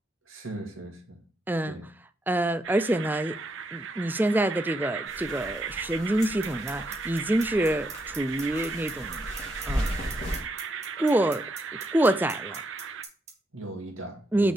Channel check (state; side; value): normal; both; correlation 0.79